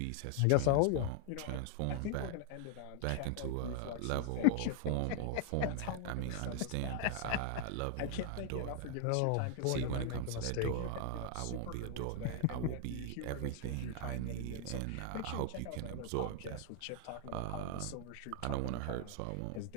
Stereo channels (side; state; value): both; different; correlation 0.00